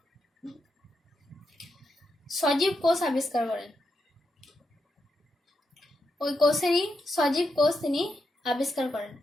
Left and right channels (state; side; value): normal; both; correlation 0.84